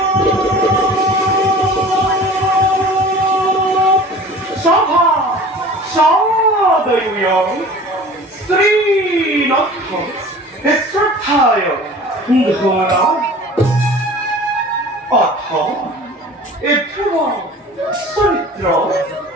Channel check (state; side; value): normal; both; correlation 0.42